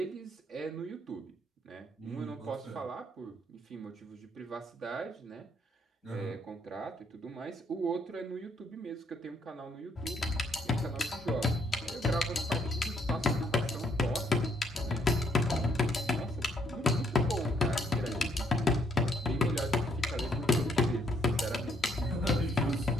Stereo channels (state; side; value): normal; both; correlation 0.70